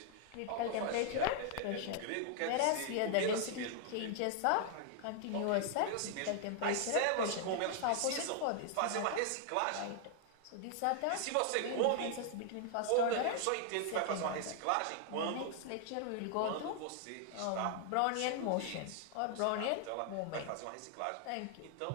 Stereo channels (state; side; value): different; both; correlation 0.00